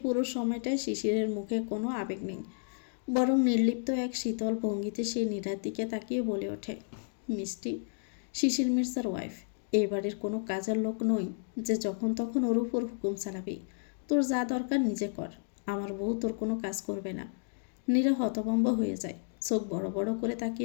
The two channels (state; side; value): silent; right; digital silence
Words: পুরো সময়টায় শিশিরের মুখে কোনো আবেগ নেই, বরং নির্লিপ্ত এক শীতল ভঙ্গিতে সে নীরার দিকে তাকিয়ে বলে ওঠে, মিষ্টি, শিশির মির্জার ওয়াইফ, এই বাড়ির কোনো কাজের লোক নই যে যখন তখন ওর উপর হুকুম চালাবি। তোর যা দরকার নিজে কর, আমার বউ তোর কোনো কাজ করবে না। নীরা হতভম্ব হয়ে যায়, চোখ বড় বড় করে